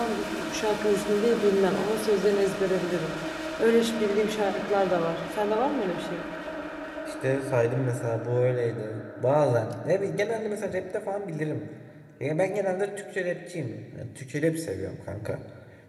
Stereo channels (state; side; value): identical; both; correlation 1.00